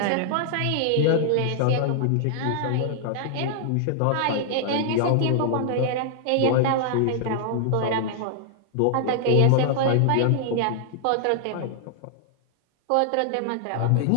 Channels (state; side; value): different; both; correlation -0.01